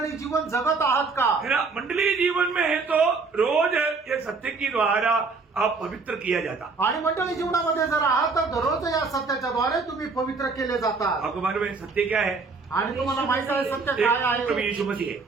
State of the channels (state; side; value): quieter; left; 4.3 dB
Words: जीवन जगत आहात का? है ना। मंडली जीवन में है तो रोज ये सत्य की द्वारा आप पवित्र किया जाता। आणि मंडळी जीवनामध्ये जर आहात तर दररोज या सत्याच्या द्वारे तुम्ही पवित्र केले जातात। आपको मालूम है सत्य क्या है? आणि तुम्हाला माहित आहे सत्य काय एक प्रभु आहे? यीशु मसीह है।